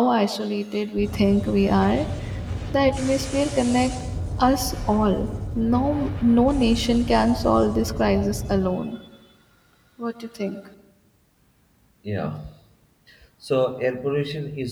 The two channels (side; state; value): both; identical; correlation 1.00